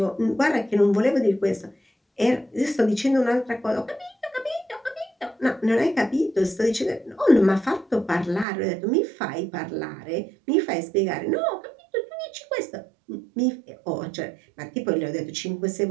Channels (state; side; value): drops out; left; at 8.5 s